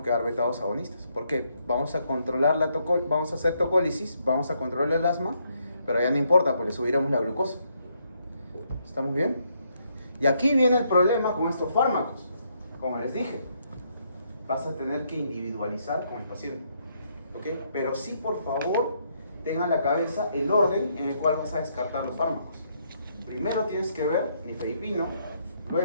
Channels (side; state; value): both; inverted; correlation -0.74